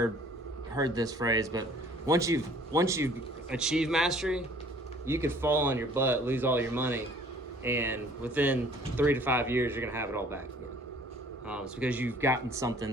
heard this phrase, but once you've achieved mastery, you could fall on your butt, lose all your money, and within 3 to 5 years, you're gonna have it all back again. It's because you've gotten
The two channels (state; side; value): normal; both; correlation 0.54